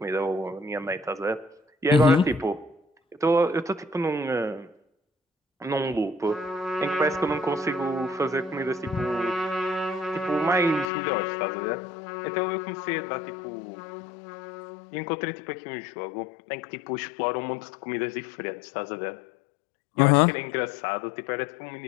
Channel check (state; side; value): drops out; right; at 10.9 s